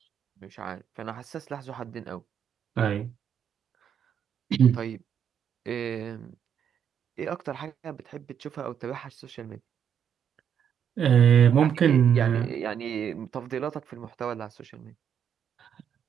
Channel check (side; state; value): left; quieter; 8.4 dB